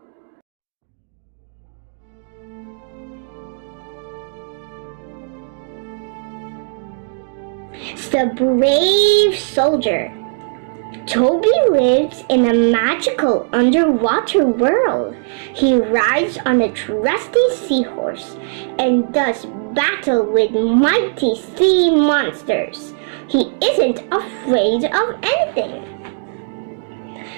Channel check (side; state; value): left; silent; digital silence